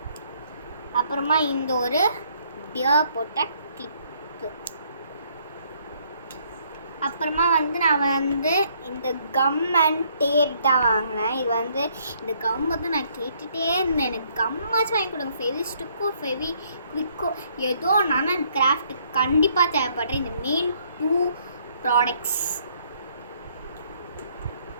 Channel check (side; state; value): both; inverted; correlation -0.67